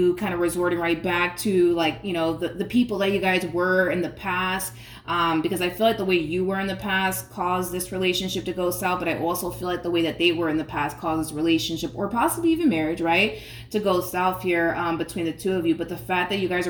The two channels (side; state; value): both; identical; correlation 1.00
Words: kind of resorting right back to, like, you know, the people that you guys were in the past, because I feel like the way you were in the past caused this relationship to go south, but I also feel like the way that they were in the past caused this relationship, or possibly even marriage, right, to go south here between the two of you. But the fact that you guys